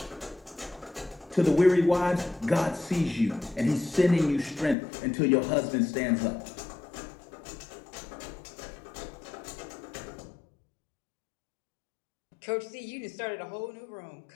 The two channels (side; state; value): right; drops out; at 4.8 s